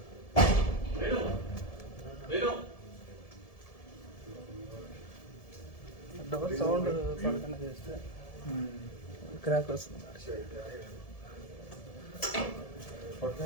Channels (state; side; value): late; right; 1.7 ms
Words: డోర్ సౌండ్ పడకుండా చేస్తే క్రాక్ వస్తుంది.